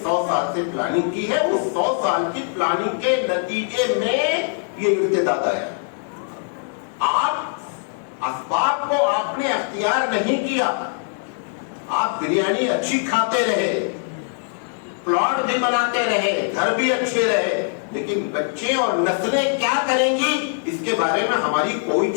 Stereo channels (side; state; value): right; silent; digital silence